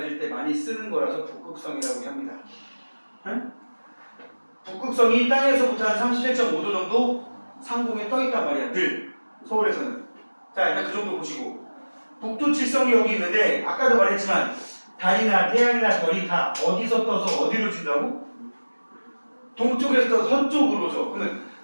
때 많이 쓰는 거라서 북극성이라고 합니다. 응? 북극성이 땅에서부터 한 37.5도 정도 상공에 떠 있단 말이야. 늘 서울에서는. 자, 일단 그 정도 보시고. 북두칠성이 여기 있는데 아까도 말했지만 달이나 태양이나 별이 다 어디서 떠서 어디로 진다고? 동쪽에서 떠서 서쪽으로 져. 그러면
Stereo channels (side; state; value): both; inverted; correlation -1.00